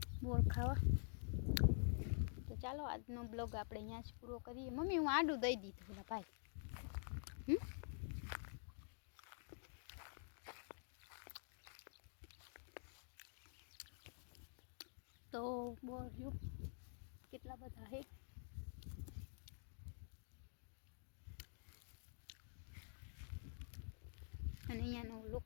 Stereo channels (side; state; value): right; silent; digital silence